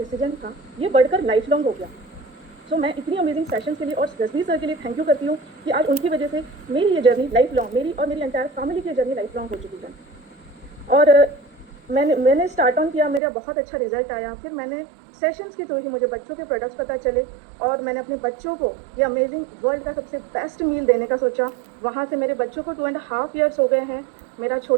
था, ये बढ़कर लाइफ लॉन्ग हो गया। मैं इतनी अमेजिंग सेशंस के लिए और जसबीर सर के लिए थैंक यू करती हूँ कि आज उनकी वजह से मेरी ये जर्नी लाइफ लॉन्ग, मेरी और मेरी एंटायर फैमिली की जर्नी लाइफ लॉन्ग हो चुकी है। और मैंने स्टार्ट ऑन किया, मेरा बहुत अच्छा रिजल्ट आया। फिर मैंने सेशंस के थ्रू ही मुझे बच्चों के प्रोडक्ट्स पता चले और मैंने अपने बच्चों को ये अमेजिंग वर्ल्ड का सबसे बेस्ट मील देने का सोचा। वहाँ से मेरे बच्चों को 2.5 ईयर्स हो गए हैं। मेरा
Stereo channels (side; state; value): left; drops out; at 13.2 s